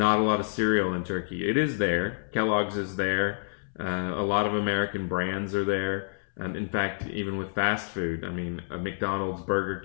a lot of cereal in Turkey. It is there. Kellogg's is there. A lot of American brands are there. In fact, even with fast food, I mean, McDonald's, Burger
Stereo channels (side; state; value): right; silent; 59 dB below the other